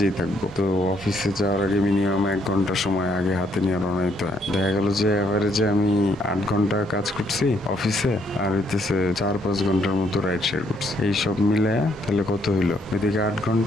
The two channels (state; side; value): normal; both; correlation 0.71